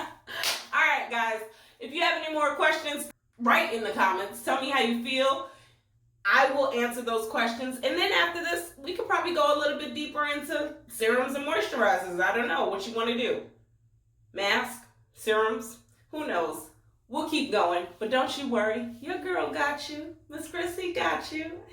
All right, guys, if you have any more questions, write in the comments. Tell me how you feel. I will answer those questions. And then after this, we could probably go a little bit deeper into serums and moisturizers. I don't know what you want to do. Mask, serums, who knows? We'll keep going, but don't you worry. Your girl got you. Miss Chrissy got you.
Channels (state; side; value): identical; both; correlation 1.00